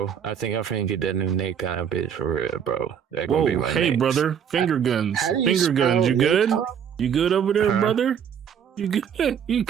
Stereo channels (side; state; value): left; quieter; 8.0 dB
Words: I think I'm finna get that new Nacon bitch for real, bro. Whoa, hey, brother. Finger guns. Finger guns. You good? You good over there, brother? You good? You